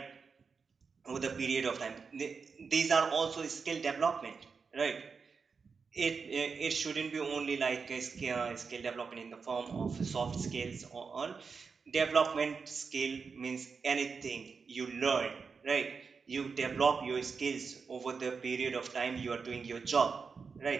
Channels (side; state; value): left; quieter; 5.3 dB